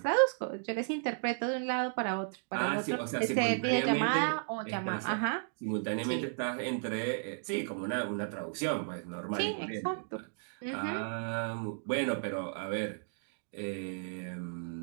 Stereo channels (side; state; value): left; silent; digital silence